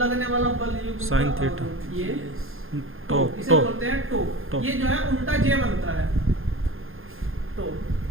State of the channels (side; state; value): left; late; 0.60 ms